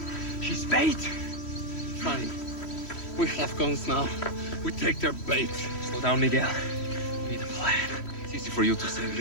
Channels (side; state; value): right; late; 3.1 ms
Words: She's bait. Fine. We have guns now. We take their bait. Slow down, Miguel. We need a plan. It's easy for you to say,